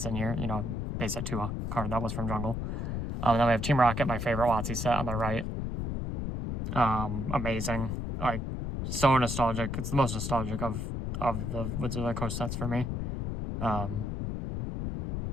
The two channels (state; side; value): noise; left; rumble, 3 dB below the sound